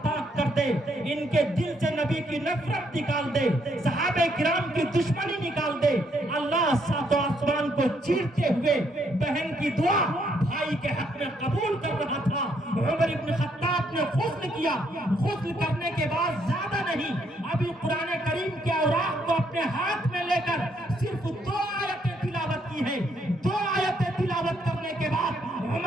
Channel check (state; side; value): normal; both; correlation 0.72